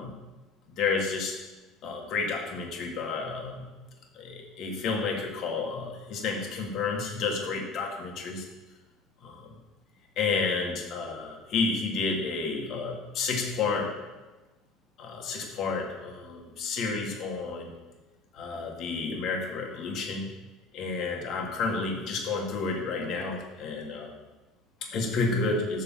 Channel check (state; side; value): quieter; right; 3.8 dB